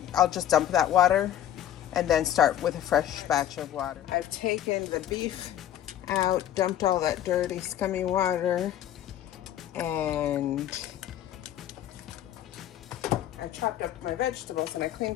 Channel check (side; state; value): right; quieter; 11.4 dB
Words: just dump that water and then start with a fresh batch of water. I've taken the beef out, dumped all that dirty, scummy water, and I chopped up my vegetables and I